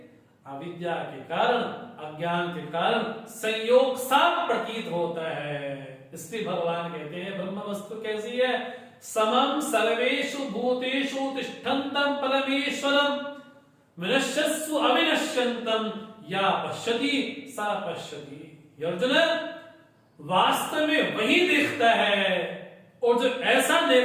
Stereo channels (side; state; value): both; identical; correlation 1.00